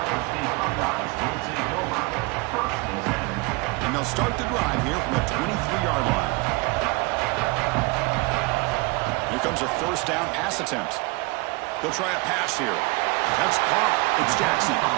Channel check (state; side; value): quieter; left; 26.5 dB